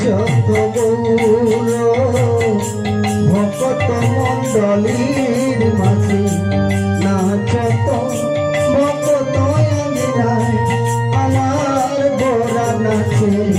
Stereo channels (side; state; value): both; identical; correlation 1.00